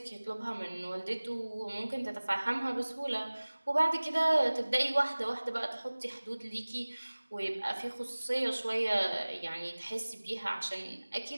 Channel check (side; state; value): both; inverted; correlation -1.00